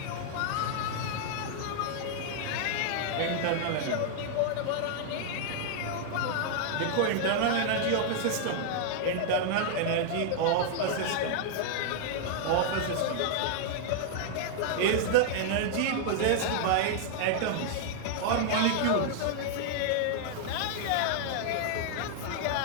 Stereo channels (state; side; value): different; both; correlation -0.01